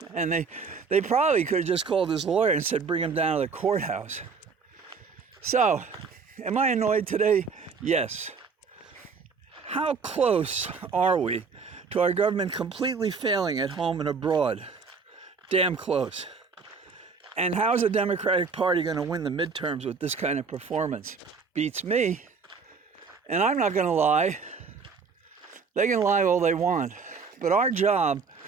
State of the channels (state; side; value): quieter; left; 5.1 dB